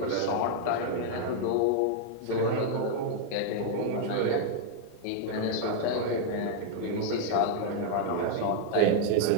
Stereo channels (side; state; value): both; different; correlation -0.01